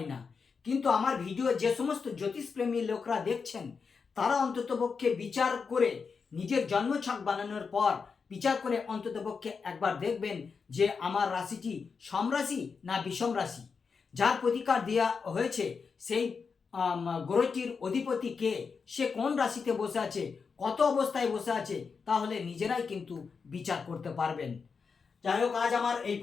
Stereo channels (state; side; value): quieter; right; 5.4 dB